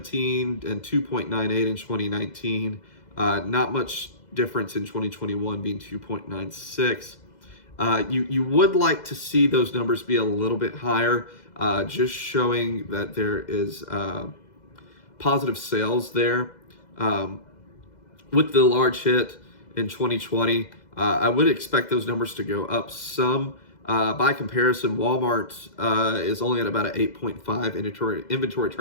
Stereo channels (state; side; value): late; right; 2.0 ms